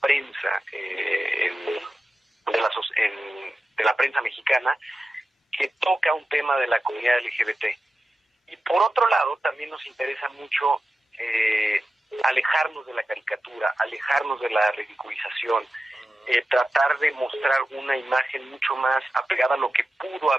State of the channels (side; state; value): both; normal; correlation 0.93